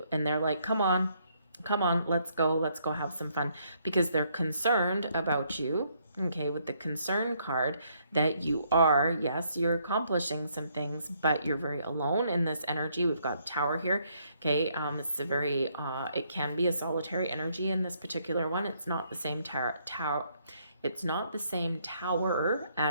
and they're like, come on, let's go have some fun, because they're concerned about you, okay, with the concern card, that you're accomplishing some things, but you're very alone in this energy. We've got tower here, okay. It's a very, it can be a solitary energy in this particular one. It's not the same it's not the same tower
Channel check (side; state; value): both; inverted; correlation -0.71